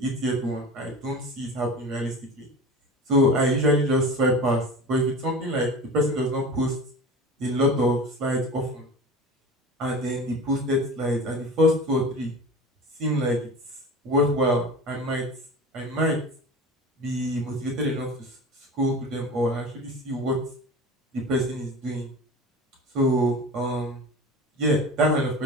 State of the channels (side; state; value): both; normal; correlation 0.34